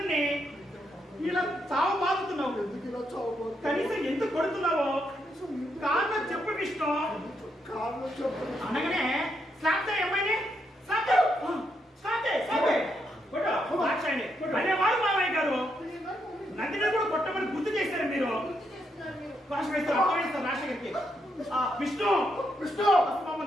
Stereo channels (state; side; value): normal; both; correlation 0.79